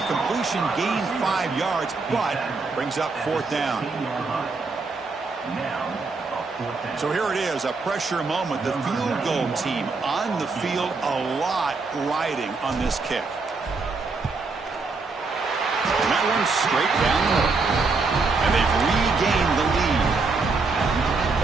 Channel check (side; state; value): left; quieter; 4.1 dB